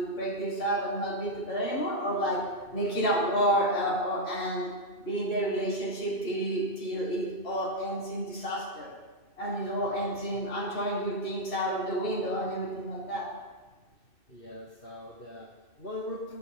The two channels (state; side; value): late; right; 2.6 ms